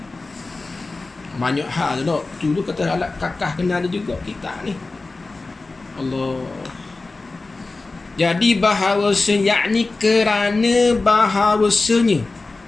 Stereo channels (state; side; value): quieter; right; 3.5 dB